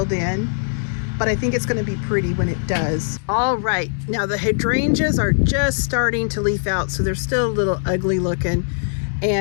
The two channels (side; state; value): right; silent; digital silence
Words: in, but I think it's going to be pretty when it does. All right, now the hydrangeas are just starting to leaf out, so they're still a little ugly looking.